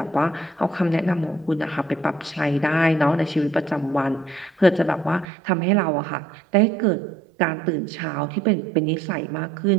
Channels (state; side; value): drops out; left; at 5.2 s